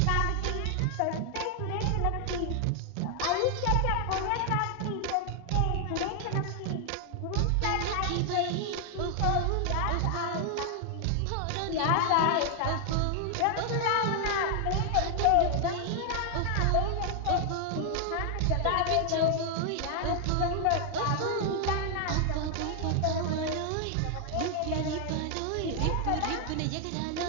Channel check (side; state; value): both; different; correlation 0.00